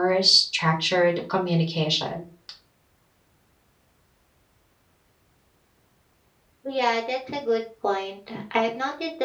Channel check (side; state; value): both; identical; correlation 1.00